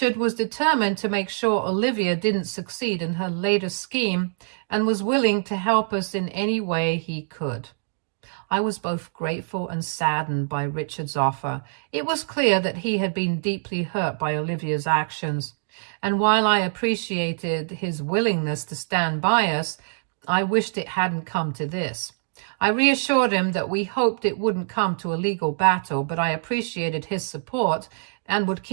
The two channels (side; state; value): left; silent; digital silence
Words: was determined to make sure Olivia didn't succeed in her latest scheme and was willing to help us in any way he could. I was both grateful and saddened by Richard's offer. It was clear that he had been deeply hurt by Olivia's actions, and while I appreciated his willingness to stand by us, I wished it hadn't come to this. I reassured him that we hoped it wouldn't come to a legal battle, but I appreciated his support and would